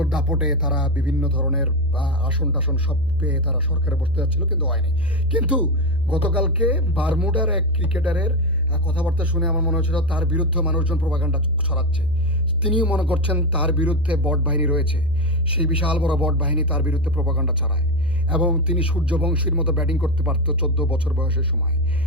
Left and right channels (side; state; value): left; noise; hum, 15 dB below the sound